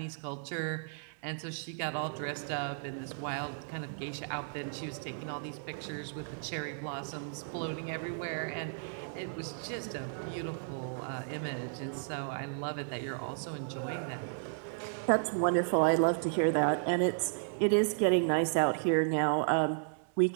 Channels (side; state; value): left; silent; 55 dB below the other